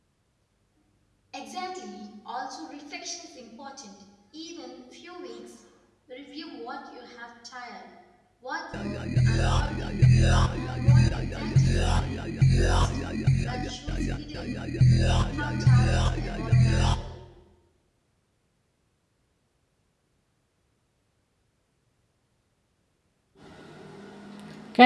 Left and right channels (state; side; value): identical; both; correlation 1.00